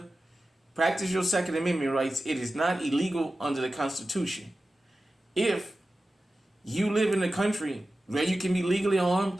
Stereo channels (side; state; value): both; normal; correlation 0.94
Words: practice your Second Amendment rights. It is not illegal under the Constitution. If you live in a country where you can be legally armed,